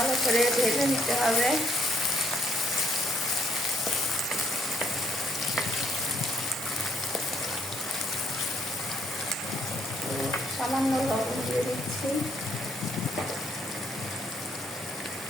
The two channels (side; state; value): both; normal; correlation 0.70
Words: করে ভেজে নিতে হবে। সামান্য লবণ দিয়ে দিচ্ছি।